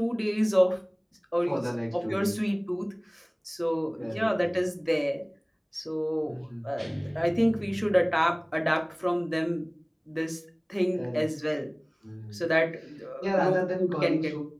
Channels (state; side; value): identical; both; correlation 1.00